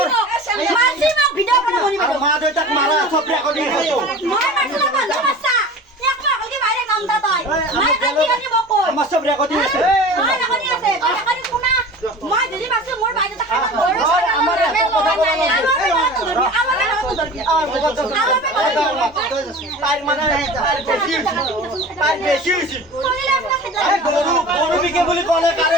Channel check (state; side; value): normal; both; correlation 0.38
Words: মারছি মোক ভিডিও বনাও মনি বনাও মা দেউতাক মারা সব রেকর্ডিং হতো মই মারছি না বন্ধ বাচ্চা এক মাস আগে বাইরে কামটা তাই মই কাটি কাটি মোক কই আমার সব রেকর্ডিং আছে মই রেকর্ডিং আছে তুই রেকর্ডিং শুনা মই যদি মারছি মোর বাইরে তা খানা ধরে আমার তার মানে তার বেশি হইছে গরু বিকে বলি কোনে কারে